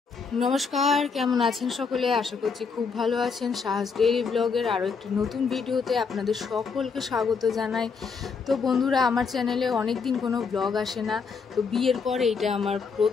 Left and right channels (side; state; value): right; quieter; 5.3 dB